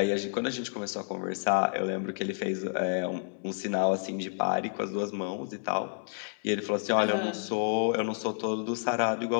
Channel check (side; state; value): right; silent; digital silence